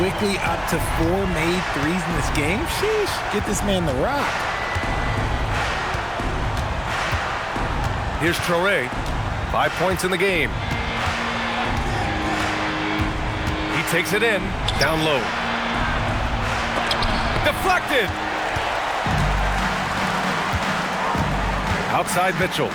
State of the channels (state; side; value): identical; both; correlation 1.00